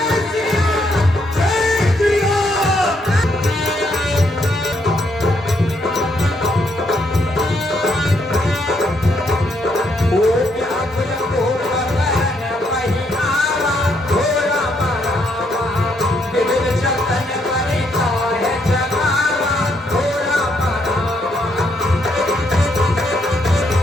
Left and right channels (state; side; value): normal; both; correlation 0.74